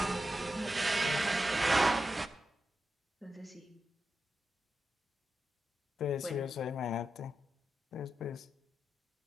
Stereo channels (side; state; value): both; normal; correlation 0.89